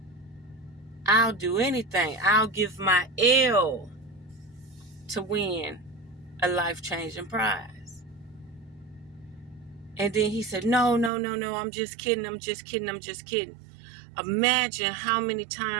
I'll do anything. I'll give my L to win a life-changing prize. And then he said, no, I'm just kidding. I'm just kidding. Imagine how many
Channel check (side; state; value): left; drops out; at 11.1 s